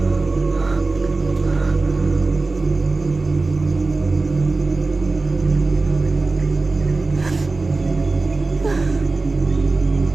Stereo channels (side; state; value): left; quieter; 3.5 dB